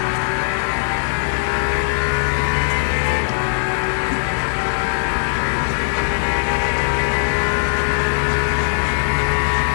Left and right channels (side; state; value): right; silent; digital silence